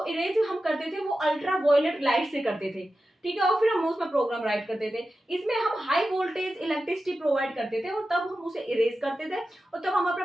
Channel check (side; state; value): both; normal; correlation 0.92